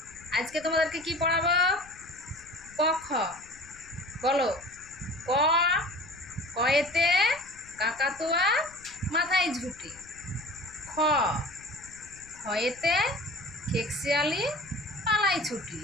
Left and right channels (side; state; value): left; noise; rumble, 23 dB below the sound